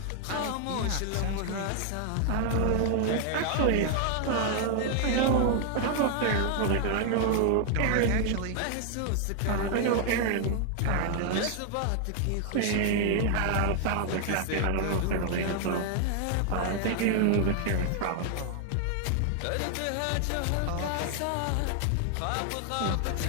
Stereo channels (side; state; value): both; different; correlation 0.00